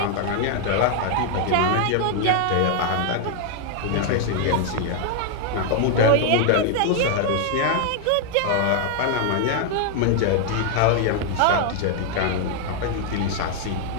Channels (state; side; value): different; both; correlation 0.00